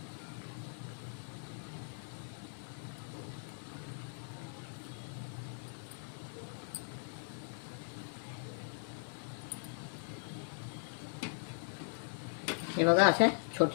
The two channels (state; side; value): silent; right; digital silence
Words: हे बघा, अशा